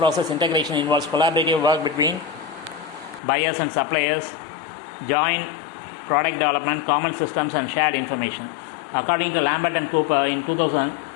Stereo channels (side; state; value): right; drops out; at 3.2 s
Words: integration involves collaborative work between buyers and suppliers, joint product development, common systems and shared information. According to Lambert and Cooper in 2000,